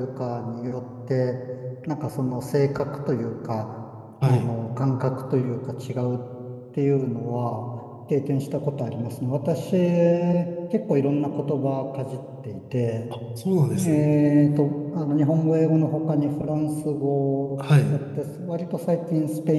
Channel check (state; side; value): identical; both; correlation 1.00